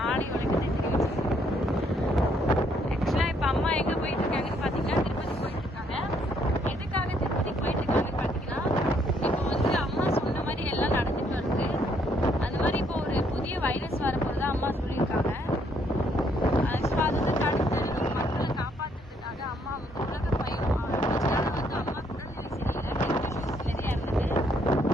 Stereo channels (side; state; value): both; normal; correlation 0.70